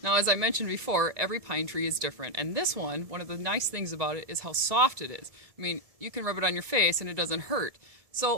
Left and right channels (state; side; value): late; left; 1.7 ms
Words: Now, as I mentioned before, every pine tree is different, and this one of the nice things about it is how soft it is. I mean, you can rub it on your face and it doesn't hurt.